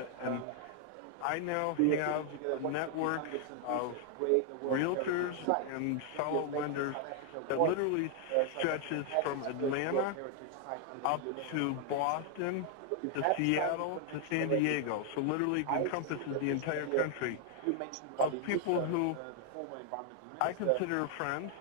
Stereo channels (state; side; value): different; both; correlation 0.00